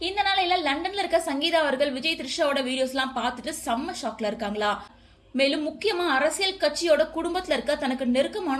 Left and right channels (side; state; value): both; identical; correlation 1.00